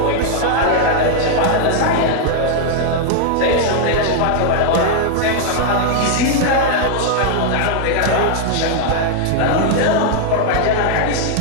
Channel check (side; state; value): both; different; correlation 0.00